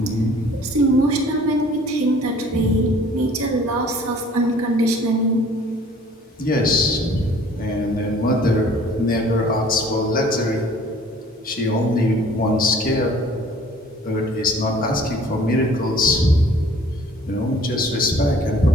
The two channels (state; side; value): normal; both; correlation 0.53